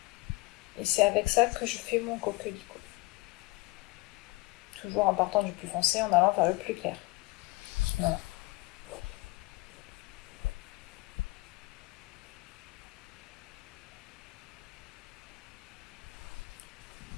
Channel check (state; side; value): quieter; right; 22.6 dB